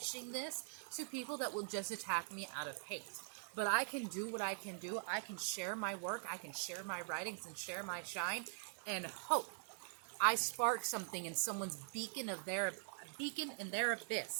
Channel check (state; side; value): silent; left; digital silence